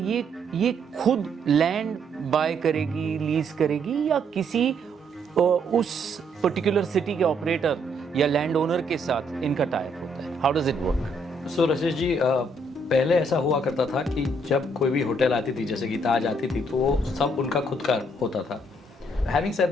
ये खुद लैंड बाय करेगी, लीज करेगी या किसी उस पर्टिकुलर सिटी के ऑपरेटर या लैंड ओनर के साथ इनका टाई अप होता है? How does it work? So Rasesh ji, पहले ऐसा हुआ करता था कि जब कोई भी होटल आती थी, जैसे कि ताज आती थी, तो वो सब उनका खुद का होता था. Having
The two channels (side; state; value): both; normal; correlation 0.70